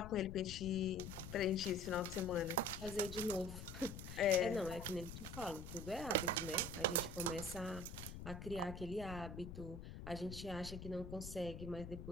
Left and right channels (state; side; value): noise; left; rumble, 9 dB below the sound